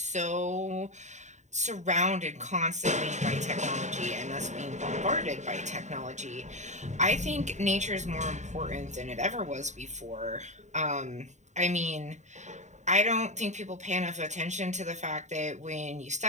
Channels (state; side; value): late; left; 0.34 ms